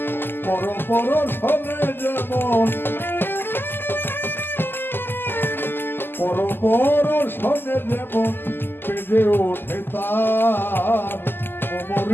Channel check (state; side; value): late; right; 0.099 ms